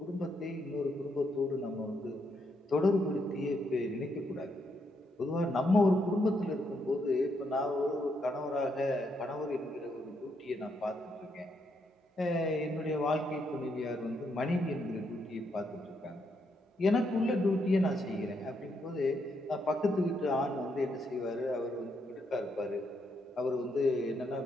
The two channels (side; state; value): both; normal; correlation 0.77